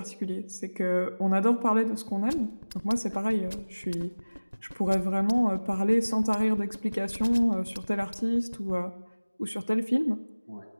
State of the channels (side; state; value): both; inverted; correlation -1.00